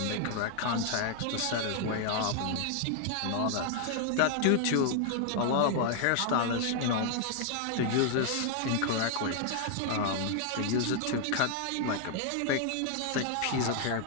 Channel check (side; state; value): both; different; correlation 0.00